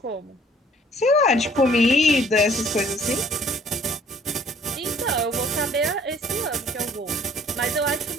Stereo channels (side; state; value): both; normal; correlation 0.57